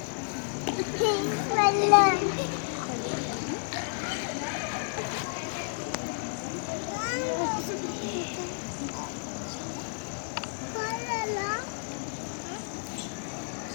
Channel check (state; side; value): silent; right; digital silence